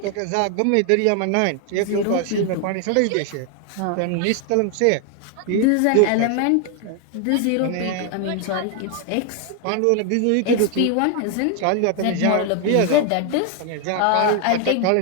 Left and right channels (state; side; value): different; both; correlation 0.00